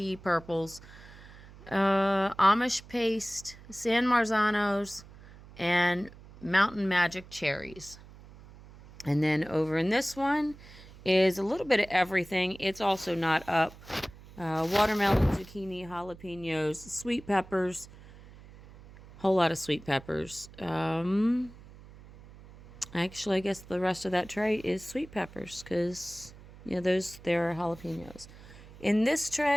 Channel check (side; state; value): right; noise; hum, 20 dB below the sound